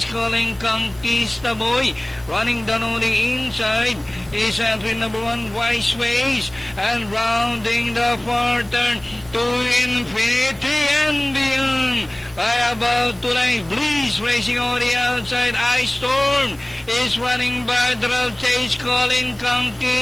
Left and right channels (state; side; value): noise; right; hiss, 25 dB below the sound